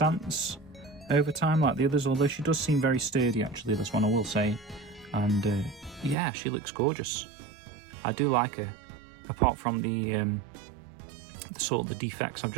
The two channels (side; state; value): left; drops out; at 6.2 s